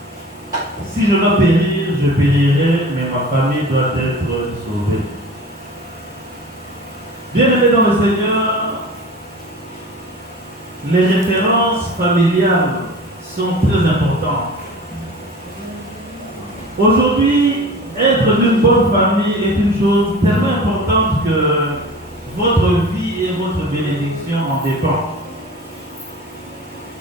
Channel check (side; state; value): both; normal; correlation 0.38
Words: si je dois périr, je périrai, mais ma famille doit être sauvée. Bien-aimés dans le Seigneur, les références familiales sont très importantes. Aujourd'hui, être d'une bonne famille est une chose tellement importante que votre vie et votre bénédiction en dépendent.